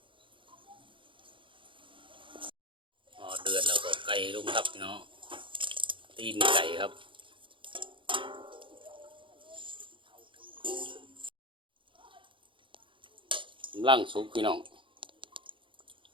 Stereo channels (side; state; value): left; late; 0.25 ms